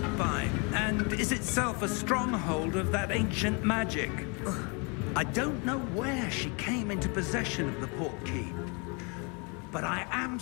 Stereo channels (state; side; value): quieter; right; 32.7 dB